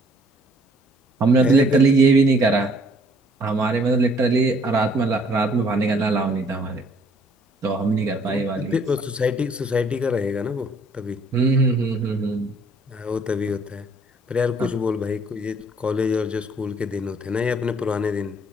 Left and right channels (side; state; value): both; normal; correlation 0.61